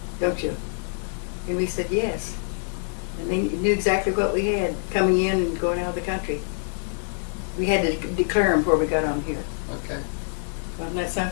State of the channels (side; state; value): right; silent; digital silence